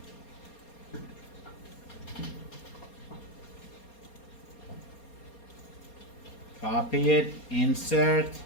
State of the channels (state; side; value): late; right; 4.3 ms